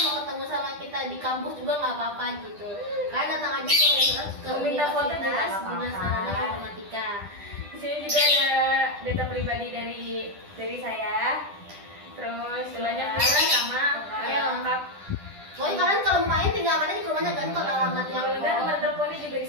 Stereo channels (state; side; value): late; left; 10 ms